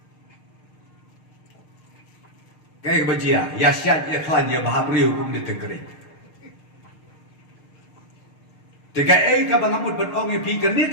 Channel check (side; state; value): right; late; 6.6 ms